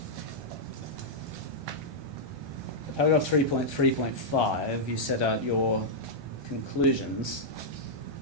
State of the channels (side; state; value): left; late; 1.2 ms